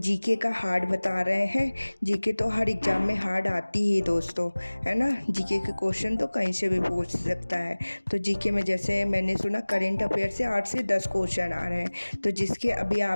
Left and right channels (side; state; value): both; inverted; correlation -1.00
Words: का हार्ड बता रहे हैं। जीके तो हर एग्ज़ाम में हार्ड आती ही दोस्तों, है ना। जीके के क्वेश्चन तो कहीं से भी पूछ सकता है। तो जीके में जैसे मैंने सुना करेंट अफेयर से 8 से 10 क्वेश्चन आ रहे हैं। तो जिसके अभी